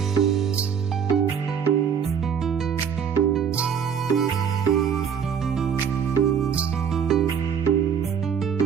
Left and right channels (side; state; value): left; quieter; 7.4 dB